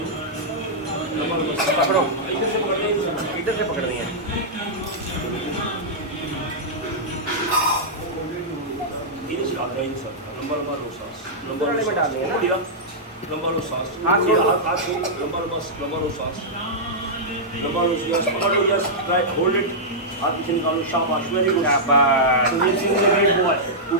लंबा लंबा सांस पकड़ो, इधर से पकड़ना है, इधर से पकड़नी है। इधर से आगे इधर से लंबा लंबा लो सांस, लंबा वाले में डालनी है ना? बढ़िया, लंबा लो सांस, हाथ छोड़ दो। हाथ छोड़, लंबा लो सांस, लंबा लो यस, पकड़ लो यस, राइट होल्ड इट, हाथ पीछे निकालो, शाबाश, वेरी गुड, शाबाश। सुनील सिंह ने ग्रेट बॉय,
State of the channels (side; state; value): both; normal; correlation -0.10